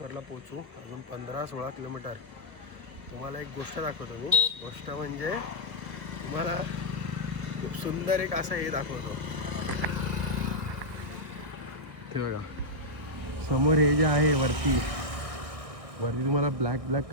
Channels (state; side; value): late; left; 1.4 ms